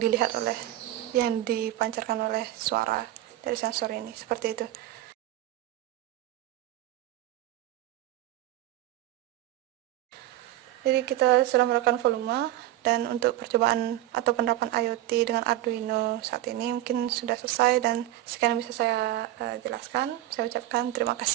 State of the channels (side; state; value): left; quieter; 14.8 dB